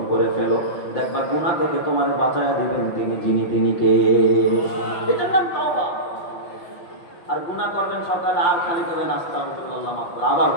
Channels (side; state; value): right; late; 5.9 ms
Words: করে ফেলো, দেখবা গুনাহ থেকে তোমার বাঁচায়া দিবেন যিনি কে। এটার নাম তওবা। আর গুনাহ করবেন সকালে, আর খালি করবেন আস্তাগফিরুল্লাহ, মাফ করে, আবার